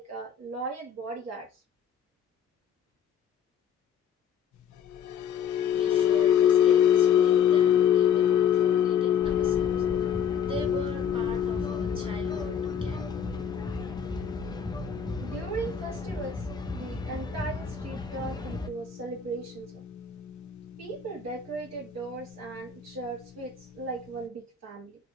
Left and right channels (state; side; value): quieter; right; 7.8 dB